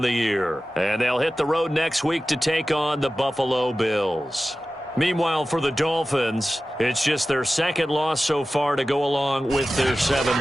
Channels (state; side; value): normal; both; correlation 0.95